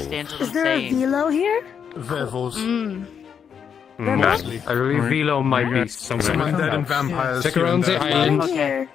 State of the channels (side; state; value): right; quieter; 7.5 dB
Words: what Is I'm there a saying. velo here? Werewolves. I believe Velo might be Some somewhere. undead and vampires. Stick here around and the there. island. Here.